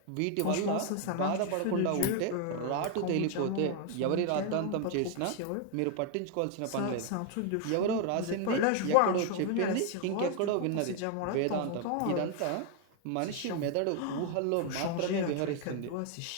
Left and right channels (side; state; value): both; different; correlation 0.01